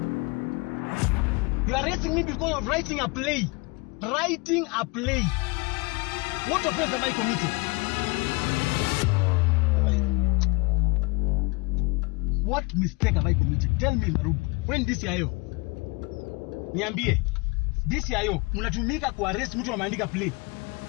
You are arresting me because of writing a play. Writing a play. What offense have I committed? What mistake have I committed? Tell me, Marubu. When DCIO? Niambie. DCIO, mnatumika ku arrest mtu ameandika play.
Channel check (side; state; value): right; quieter; 27.7 dB